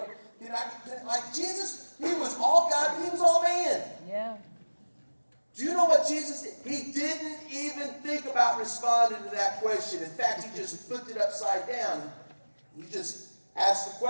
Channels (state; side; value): inverted; both; correlation -1.00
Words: Like Jesus, he was all God, but he was all man. Yeah. Do you know what Jesus did? He didn't even think about responding to that question. In fact, he just flipped it upside down. He just asked the